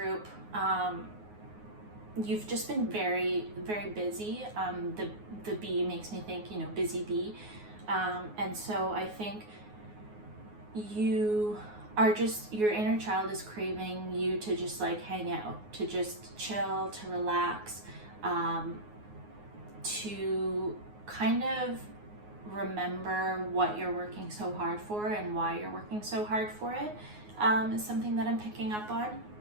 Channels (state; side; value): late; left; 9.5 ms